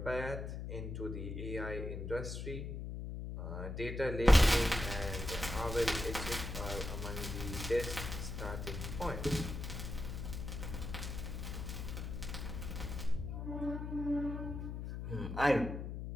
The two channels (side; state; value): left; noise; hum, 5 dB below the sound